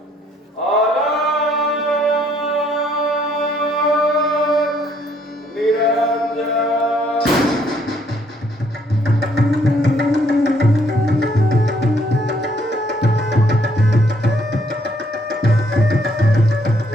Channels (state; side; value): normal; both; correlation 0.67